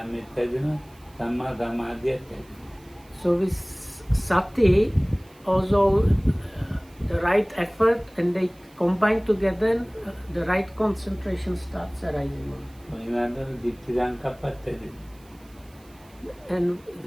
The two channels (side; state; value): right; noise; hiss, 28 dB below the sound